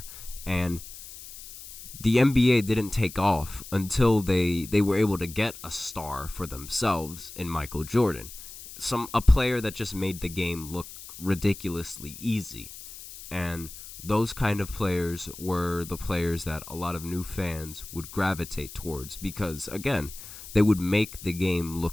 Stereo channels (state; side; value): noise; left; hiss, 14 dB below the sound